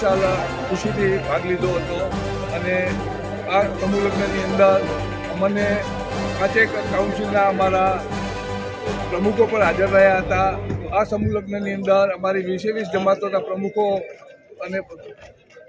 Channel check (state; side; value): identical; both; correlation 1.00